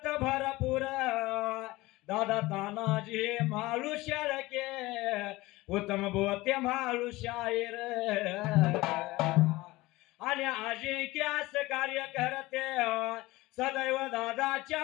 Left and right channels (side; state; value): right; quieter; 19.9 dB